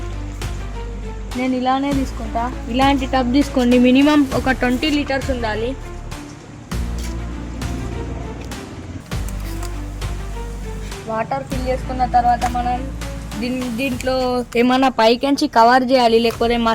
నేను ఇలానే తీసుకుంటా. ఇలాంటి టబ్ తీసుకోండి. మినిమం ఒక 20 లీటర్స్ ఉండాలి. వాటర్ ఫిల్ చేసుకున్న తర్వాత మనం దీంట్లో ఏమన్నా పైకించి కవర్ చేయాలి, లేకపోతే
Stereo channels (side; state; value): both; identical; correlation 1.00